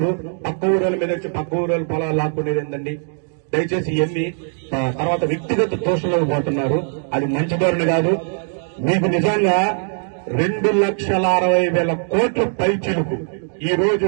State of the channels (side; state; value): left; silent; 66 dB below the other